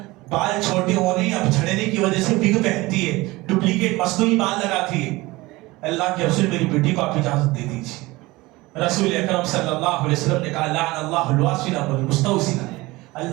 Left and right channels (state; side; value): quieter; left; 20.9 dB